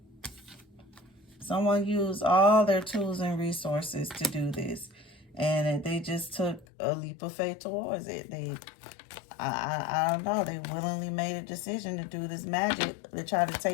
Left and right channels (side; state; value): right; drops out; at 6.7 s